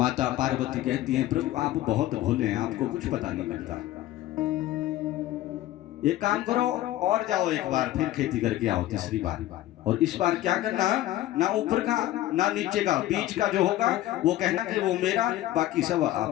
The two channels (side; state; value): right; quieter; 14.8 dB